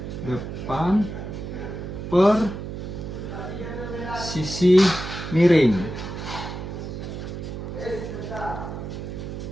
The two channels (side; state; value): right; noise; hum, 7 dB below the sound